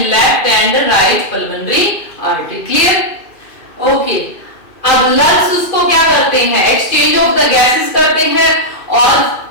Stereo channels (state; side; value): late; right; 2.4 ms